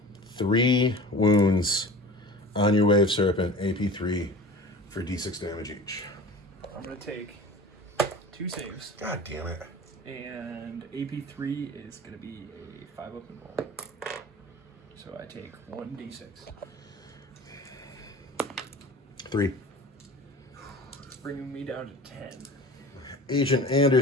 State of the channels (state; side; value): normal; both; correlation 0.39